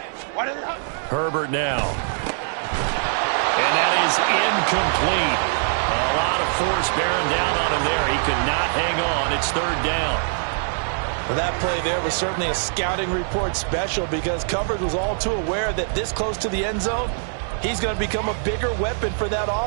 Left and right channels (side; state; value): left; silent; 64 dB below the other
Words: Herbert now. And that is incomplete. A lot of force bearing down on him there. He could not hang on. It's 3rd down. Well, that play there was certainly a scouting report special, because coverage was all too aware that this close to the end zone, he's going to become a bigger weapon for that